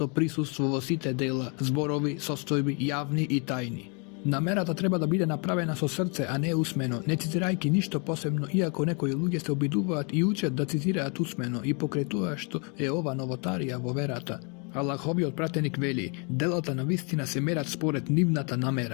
присуство во сите дела, зборови, состојби, јавни и тајни. Намерата треба да биде направена со срце, а не усмено, не цитирајќи ништо посебно, иако некои луѓе се обидуваат и учат да цитираат усмено и покрај тоа што е ова новотарија во верата. Аллаховиот пратеник вели, делата на вистина се мерат според нивната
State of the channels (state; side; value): quieter; right; 35.3 dB